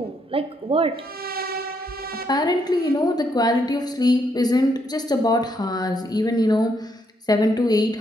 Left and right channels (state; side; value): normal; both; correlation 0.75